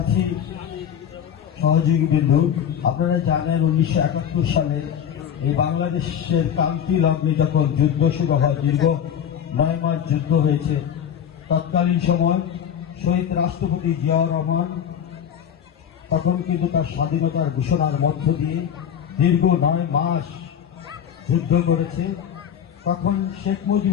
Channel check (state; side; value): quieter; right; 8.8 dB